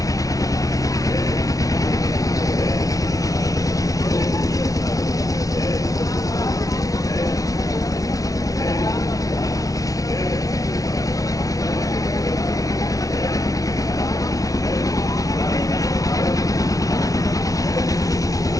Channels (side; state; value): right; late; 0.17 ms